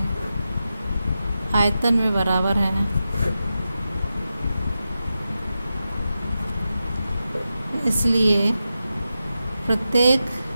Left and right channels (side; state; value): both; inverted; correlation -0.90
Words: आयतन में बराबर हैं, इसलिए प्रत्येक